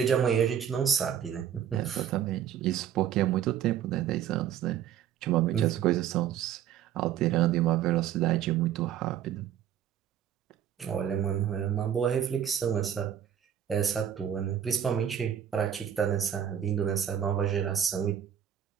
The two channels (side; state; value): left; quieter; 9.7 dB